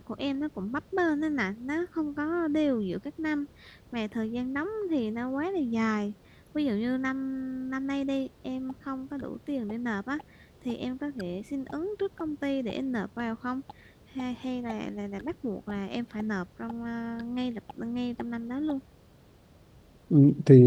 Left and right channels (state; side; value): identical; both; correlation 1.00